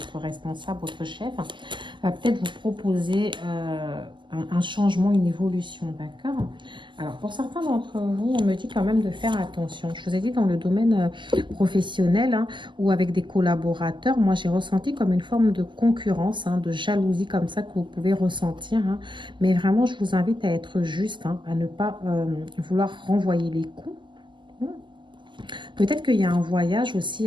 responsable, votre chef, va peut-être vous proposer un changement, une évolution, d'accord? Alors, pour certains d'entre vous, on me dit quand même de faire attention. Je vous ai dit dans le domaine professionnel, hein, ou avec des collaborateurs, moi j'ai ressenti comme une forme de concurrence, hein, de jalousie comme ça que vous pouvez ressentir. Hein. Mais vraiment, je vous invite à être juste, hein, à ne pas vouloir renvoyer les coups. Peut-être qu'il y a un voyage aussi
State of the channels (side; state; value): left; late; 0.23 ms